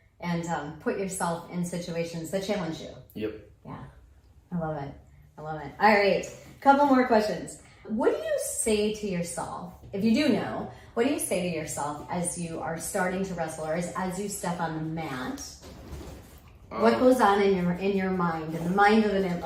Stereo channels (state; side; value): identical; both; correlation 1.00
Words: and put yourself in situations that challenge you. Yep. Yeah, I love it. All right, couple more questions. What do you say to yourself, if you do know, what do you say to yourself as you are starting to wrestle, or as you step on the mat? What goes on in your mind, in the mind of an